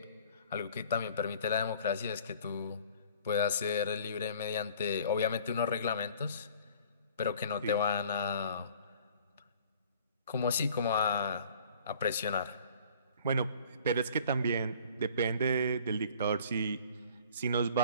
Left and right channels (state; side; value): inverted; both; correlation -0.52